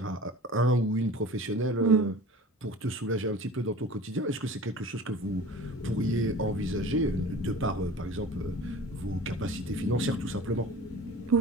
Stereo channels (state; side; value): normal; both; correlation 0.40